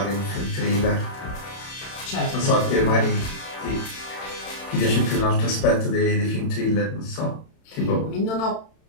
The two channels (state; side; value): late; right; 31 ms